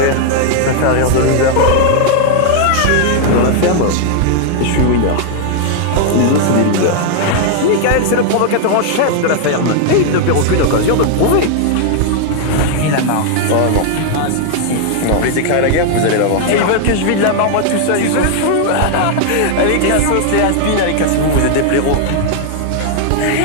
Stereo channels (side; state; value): both; different; correlation 0.00